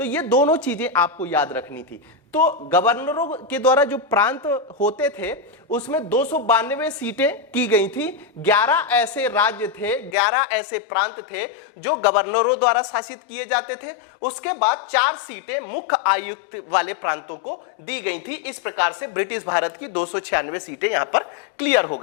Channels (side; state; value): right; drops out; at 10.2 s